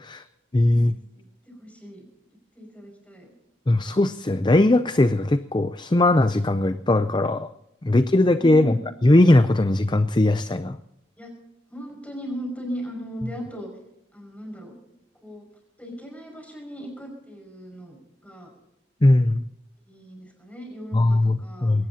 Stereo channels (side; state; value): both; normal; correlation 0.86